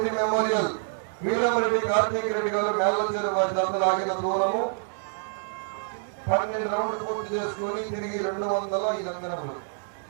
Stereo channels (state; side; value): silent; left; 60 dB below the other